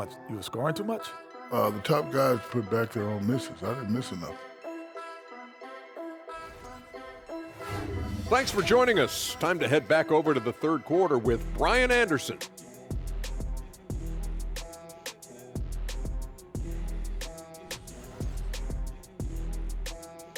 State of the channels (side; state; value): both; identical; correlation 1.00